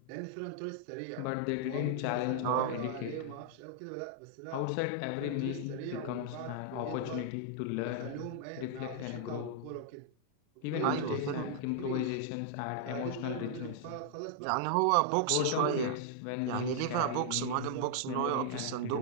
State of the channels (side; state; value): both; different; correlation -0.01